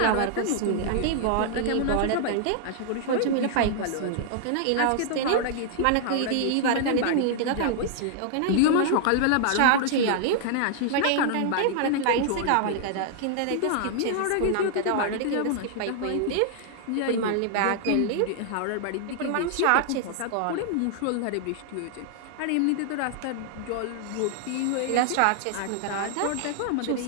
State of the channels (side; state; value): both; different; correlation -0.01